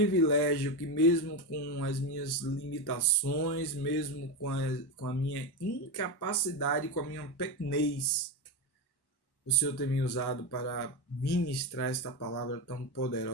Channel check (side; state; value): right; late; 1.1 ms